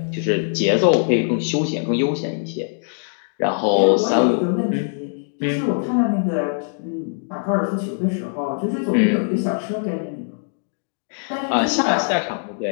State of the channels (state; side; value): silent; right; digital silence